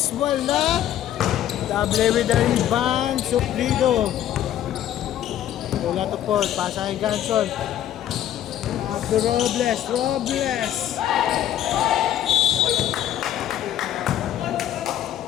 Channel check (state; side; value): quieter; right; 11.6 dB